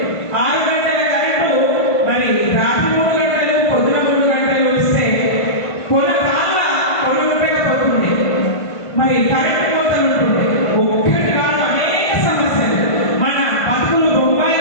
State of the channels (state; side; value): late; right; 1.5 ms